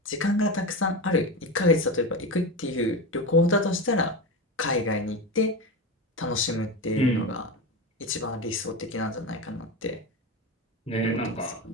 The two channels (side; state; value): both; normal; correlation 0.21